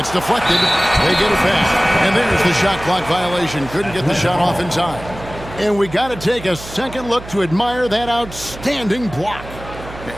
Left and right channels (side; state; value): right; noise; hum, 14 dB below the sound